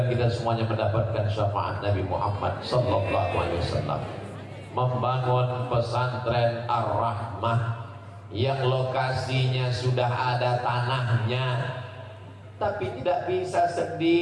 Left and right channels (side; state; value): both; identical; correlation 1.00